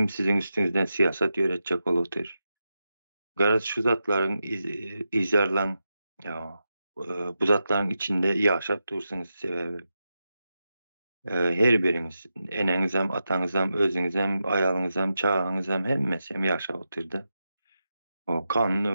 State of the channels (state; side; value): inverted; both; correlation -0.89